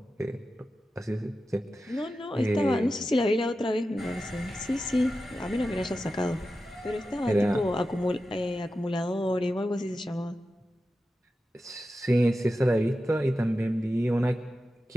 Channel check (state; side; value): normal; both; correlation 0.92